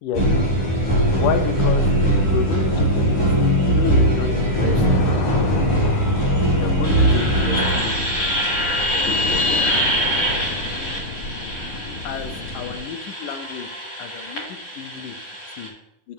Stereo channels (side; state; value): right; late; 11 ms